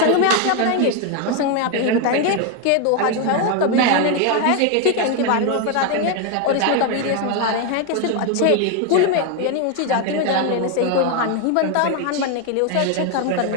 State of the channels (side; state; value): both; different; correlation 0.01